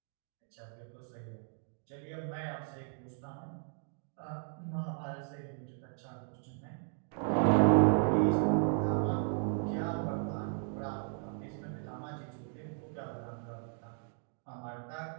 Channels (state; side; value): silent; left; 54 dB below the other